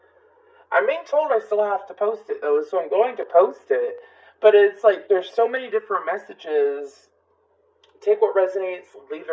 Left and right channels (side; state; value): both; identical; correlation 1.00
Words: I'm being told I still have to post it, though, so I'm going to post it, but it's like, there's so many different messages. Take what resonates, leave